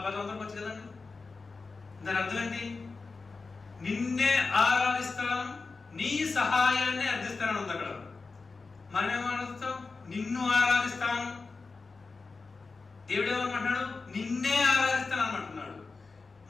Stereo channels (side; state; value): right; quieter; 4.2 dB